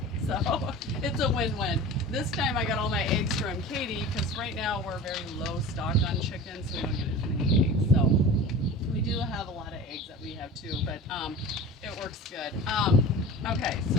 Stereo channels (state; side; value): normal; both; correlation 0.36